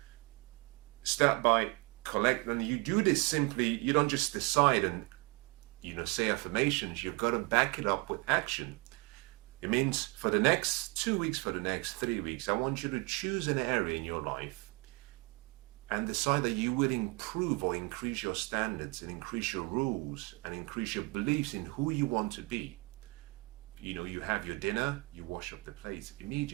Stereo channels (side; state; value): left; quieter; 27.5 dB